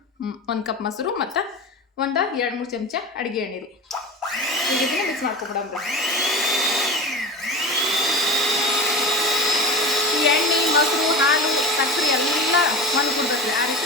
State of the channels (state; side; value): normal; both; correlation 0.31